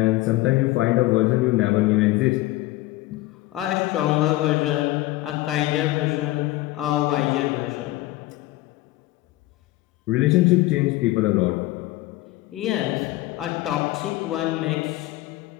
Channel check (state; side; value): quieter; right; 17.7 dB